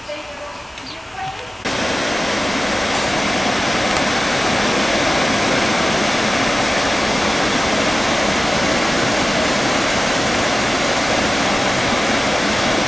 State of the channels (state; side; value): normal; both; correlation 0.95